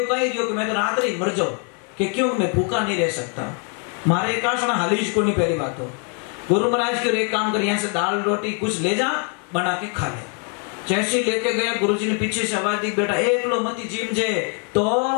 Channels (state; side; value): quieter; right; 39.8 dB